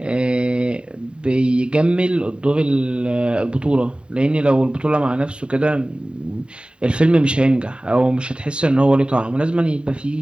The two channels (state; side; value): late; left; 0.052 ms